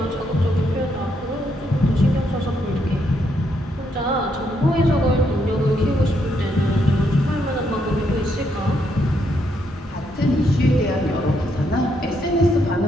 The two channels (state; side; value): normal; both; correlation 0.76